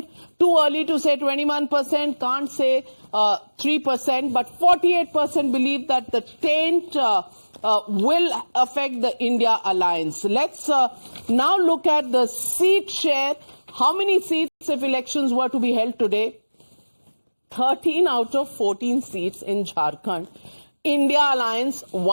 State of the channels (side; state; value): both; inverted; correlation -1.00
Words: Too early to say 21%. Can't say 3%. But 48% believe that the taint will affect the India alliance. Let's now look at the seat share. How many seats if elections were to be held today? 13 out of 14 seats in Jharkhand. India alliance,